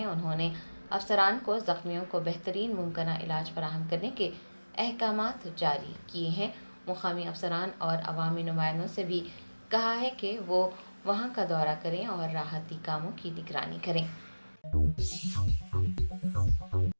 انہوں نے افسران کو زخمیوں کو بہترین ممکنہ علاج فراہم کرنے کے احکامات جاری کیے ہیں۔ مقامی افسران اور عوامی نمائندوں سے بھی کہا ہے کہ وہ وہاں کا دورہ کریں اور راحتی کاموں کی نگرانی کریں۔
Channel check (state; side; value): inverted; both; correlation -1.00